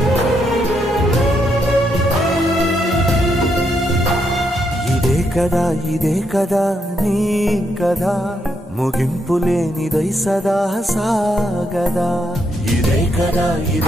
ఇదే కదా నీ కథ, ముగింపులేనిదై సదా సాగదా. ఇదే కదా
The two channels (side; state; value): both; normal; correlation 0.78